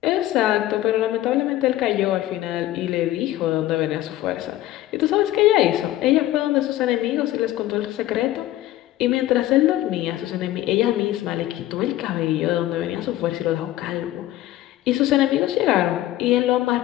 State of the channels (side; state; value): right; quieter; 14.9 dB